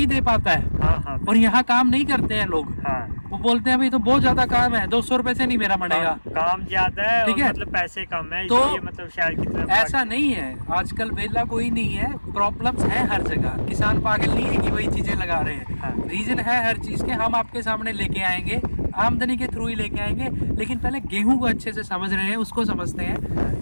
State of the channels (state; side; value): inverted; both; correlation -1.00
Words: दे पाता है। हाँ और यहाँ काम नहीं करते हैं लोग। हाँ। वो बोलते हैं भाई तो बहुत ज्यादा काम है, 200 रुपए से नहीं मेरा बनेगा। काम ज्यादा है, ठीक और है? मतलब पैसे कम है, तो इसलिए मतलब शहर की तरफ ऐसा नहीं है, आजकल वेला कोई नहीं है, प्रॉब्लम्स है हर जगह। किसान पागल नहीं है कि वही चीजें लगा रहे हैं। हाँ। रीजन है हर चीज के, हम आपके सामने लेके आएंगे, आमदनी के थ्रू ही लेके आएंगे। लेकिन पहले गेहूं को अच्छे से समझ रहे हैं, उसको समझते हैं।